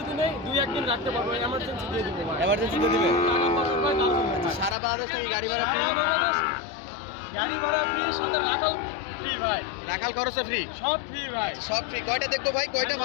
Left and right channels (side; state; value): right; drops out; at 4.8 s